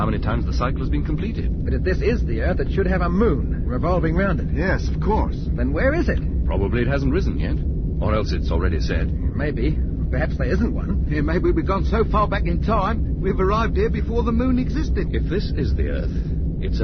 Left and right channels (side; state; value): both; identical; correlation 1.00